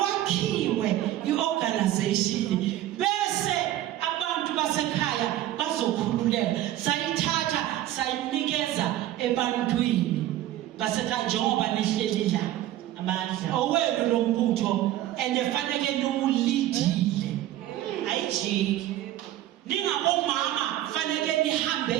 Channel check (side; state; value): left; quieter; 13.7 dB